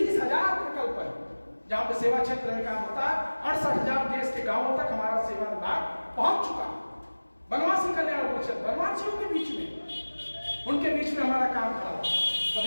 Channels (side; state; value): both; inverted; correlation -1.00